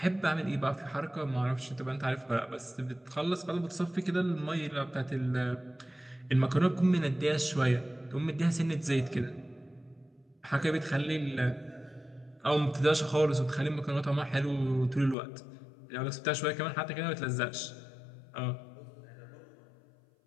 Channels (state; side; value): drops out; right; at 15.2 s